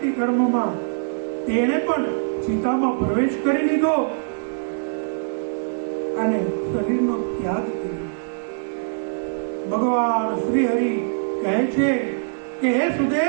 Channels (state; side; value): silent; left; digital silence